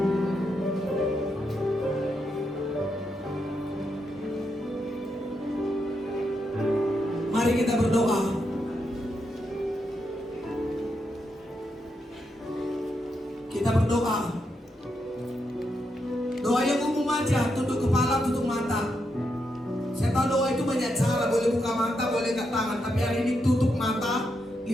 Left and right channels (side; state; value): both; normal; correlation 0.82